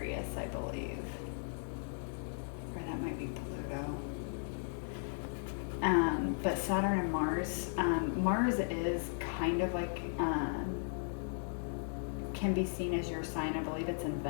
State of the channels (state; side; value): silent; right; digital silence